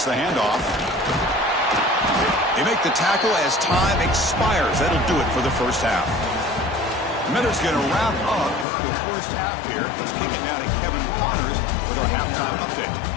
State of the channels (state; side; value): drops out; right; at 8.7 s